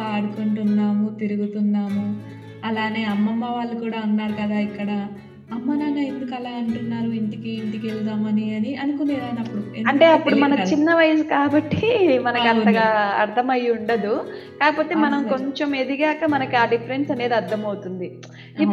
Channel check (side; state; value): both; identical; correlation 1.00